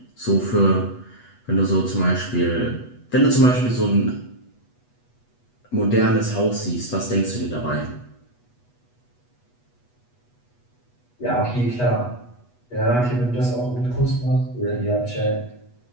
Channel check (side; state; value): right; late; 8.2 ms